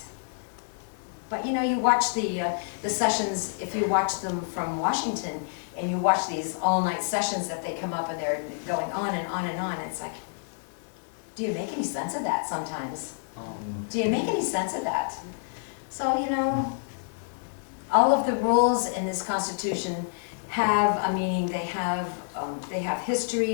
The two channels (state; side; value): silent; right; 59 dB below the other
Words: But you know, you watch the sessions, if you watch them from Washington, and you watch these all-night sessions that they come up and they're going on and on and on, it's like, do you make any sense of that sometimes? Do you make any sense of that? So, you know, all of the rules in this Constitution have a meaning. They have